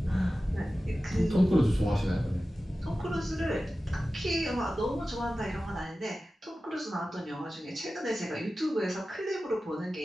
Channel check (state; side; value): normal; both; correlation 0.95